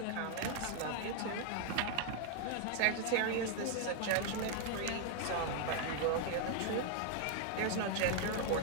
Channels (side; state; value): both; different; correlation 0.00